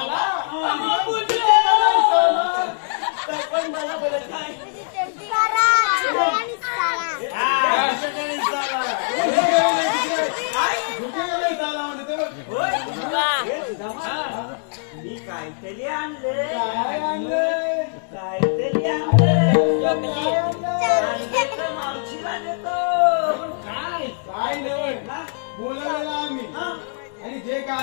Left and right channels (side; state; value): right; silent; digital silence